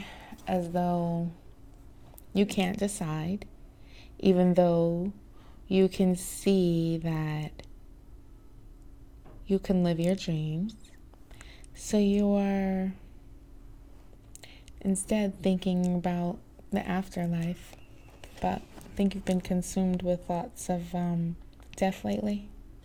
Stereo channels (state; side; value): identical; both; correlation 1.00